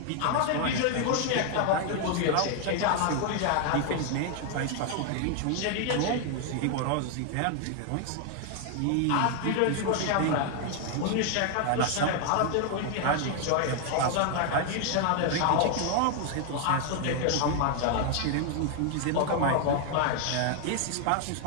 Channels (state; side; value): different; both; correlation 0.00